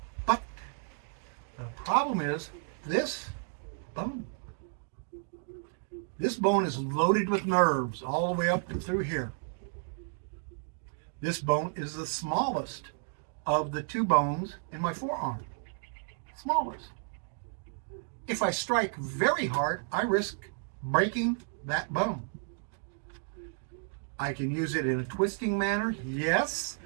But the problem is this bone. This bone is loaded with nerves all the way up and through here. This bone is the smallest of the 2 bones in my forearm. Smallest. If I strike very hard, I risk breaking that bone. I can use it in a twisting manner, yes,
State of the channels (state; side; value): silent; left; digital silence